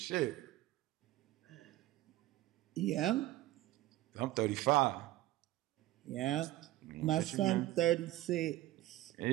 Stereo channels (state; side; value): quieter; left; 16.0 dB